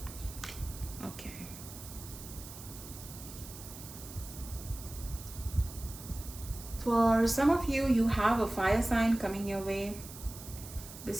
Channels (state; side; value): noise; right; hiss, 14 dB below the sound